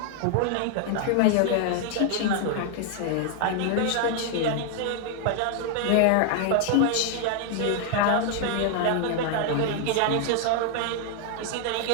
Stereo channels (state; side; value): different; both; correlation 0.00